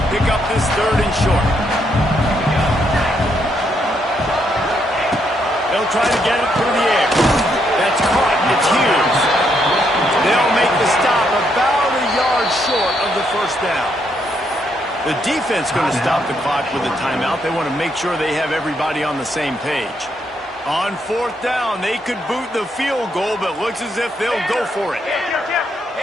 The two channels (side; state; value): both; normal; correlation 0.76